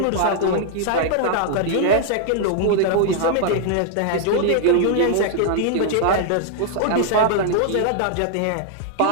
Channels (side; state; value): both; different; correlation -0.01